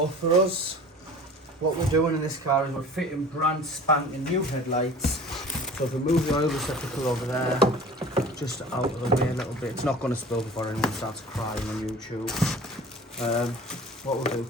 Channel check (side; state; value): both; normal; correlation 0.43